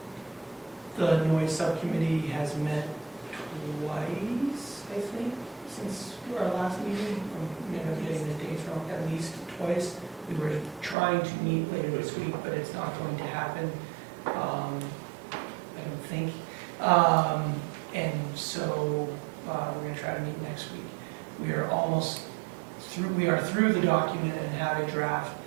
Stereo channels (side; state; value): left; drops out; at 11.0 s